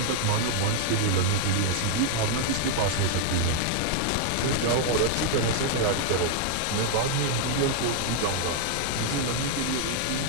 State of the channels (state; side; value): different; both; correlation 0.00